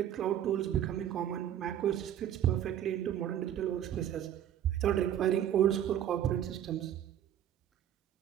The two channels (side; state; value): left; quieter; 10.6 dB